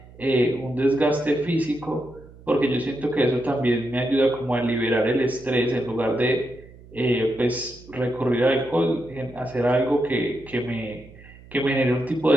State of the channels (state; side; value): noise; right; hum, 21 dB below the sound